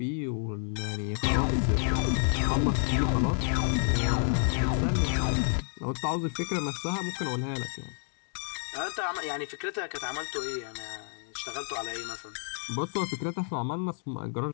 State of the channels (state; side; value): silent; right; 58 dB below the other